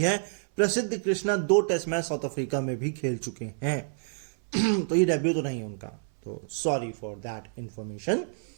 है। Prasidh Krishna 2 test match South Africa में भी खेल चुके हैं। तो ये डेब्यू तो नहीं है उनका, तो सॉरी फॉर दैट इंफॉर्मेशन।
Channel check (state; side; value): silent; left; 59 dB below the other